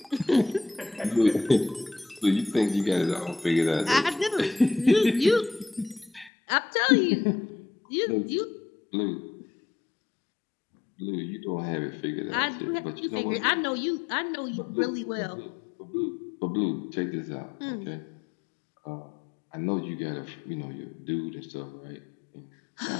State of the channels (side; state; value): right; drops out; at 6.3 s